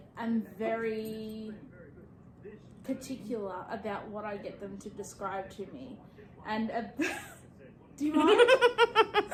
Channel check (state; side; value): identical; both; correlation 1.00